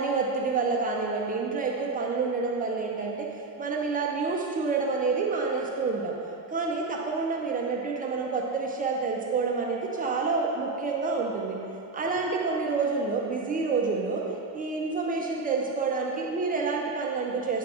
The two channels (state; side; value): quieter; left; 3.9 dB